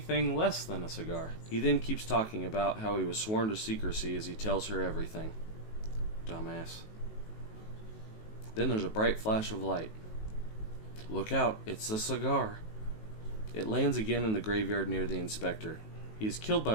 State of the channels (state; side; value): late; right; 19 ms